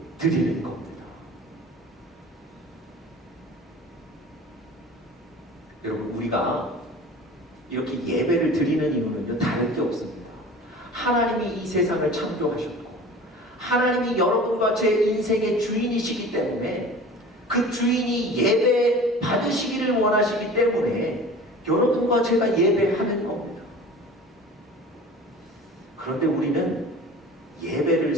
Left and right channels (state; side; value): normal; both; correlation 0.41